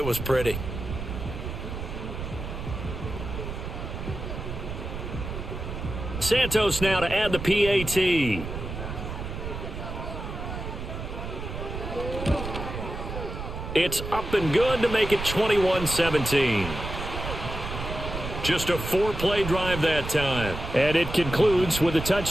was pretty. Santos now to add the PAT. It's up and good to make it 21-17. Just a 4-play drive that time. And it concludes with a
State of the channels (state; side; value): noise; right; rumble, 7 dB below the sound